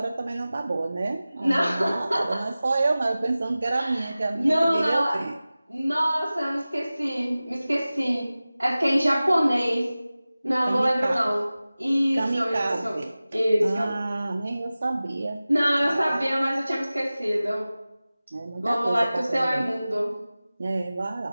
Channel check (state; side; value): inverted; both; correlation -0.97